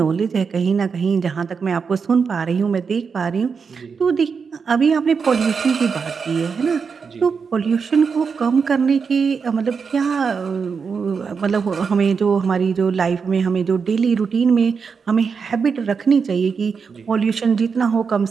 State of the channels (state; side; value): quieter; left; 5.7 dB